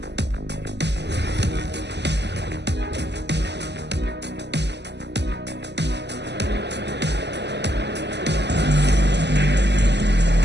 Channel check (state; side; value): late; left; 0.50 ms